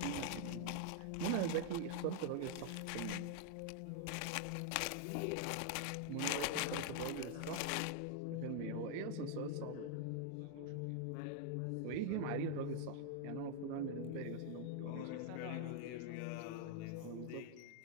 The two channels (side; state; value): both; different; correlation 0.00